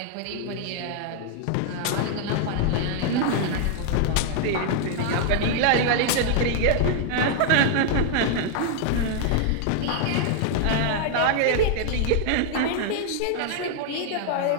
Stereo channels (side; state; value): both; different; correlation 0.00